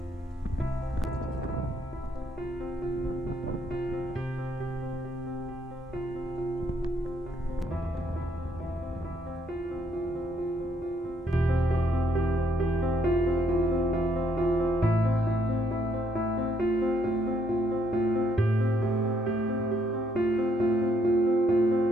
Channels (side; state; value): both; normal; correlation 0.71